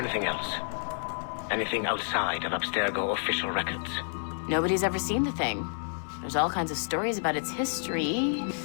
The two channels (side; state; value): right; silent; digital silence